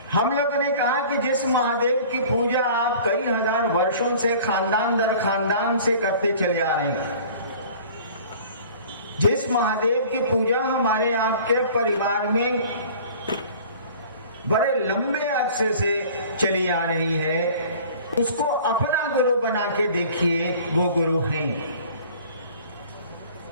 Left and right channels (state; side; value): inverted; both; correlation -0.47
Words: हम लोगों ने कहा कि जिस महादेव की पूजा आप कई हजार वर्षों से खानदान दर खानदान से करते चले आ रहे हैं, जिस महादेव की पूजा हमारे आपके परिवार में बड़े लंबे अरसे से चली आ रही है, उसको अपना गुरु बना के देखिए, वो गुरु हैं।